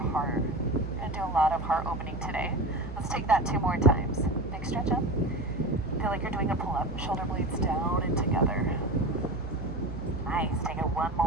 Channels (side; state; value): right; noise; hum, 8 dB below the sound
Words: We're going to do a lot of heart opening today. Let's take that 2 more times. Big stretch up. Feel like you're doing a pull-up. Shoulder blades down and together. Nice. Take it 1